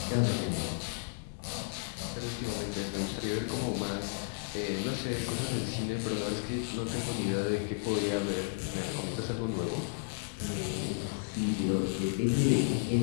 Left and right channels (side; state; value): right; silent; digital silence